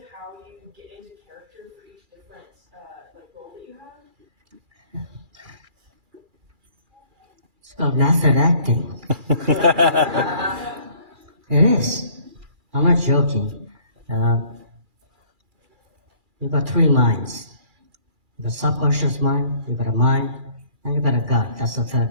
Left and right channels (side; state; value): left; late; 2.4 ms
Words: how you get into character for each different role that you have? It's called method acting. It is. I'm not joking. You've got three minds. You've got subconscious mind, you've got a mind, and you've got a gut. That's the